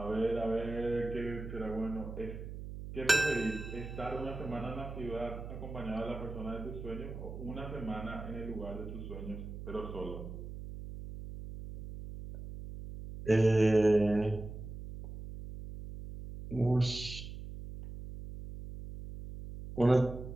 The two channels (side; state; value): right; noise; hum, 9 dB below the sound